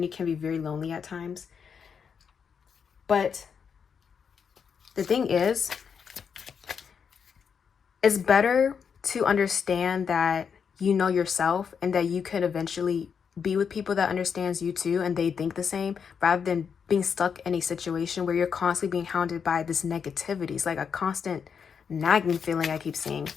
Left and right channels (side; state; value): right; quieter; 6.7 dB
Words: can be very lonely at times, but the thing is, it's better to understand that you know yourself and that you could eventually be with people that understands you too and they think the same, rather than being stuck in a situation where you're constantly being hounded by this negativity. It's like a constant nagging feeling I keep seeing.